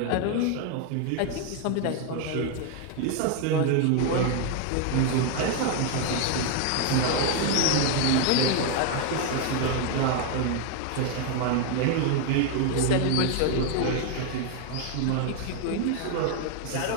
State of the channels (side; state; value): both; different; correlation 0.01